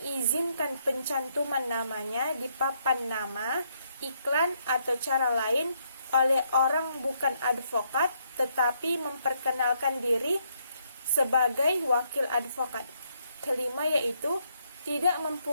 pencantuman namanya di papan nama, iklan, atau cara lain oleh orang bukan advokat, tetapi memperkenalkan diri sebagai wakil advokat. Kelima yaitu tidak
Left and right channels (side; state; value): both; inverted; correlation -0.74